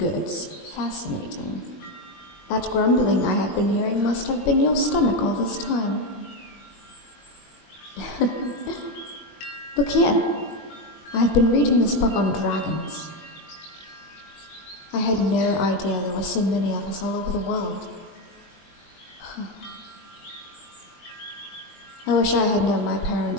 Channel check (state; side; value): late; right; 22 ms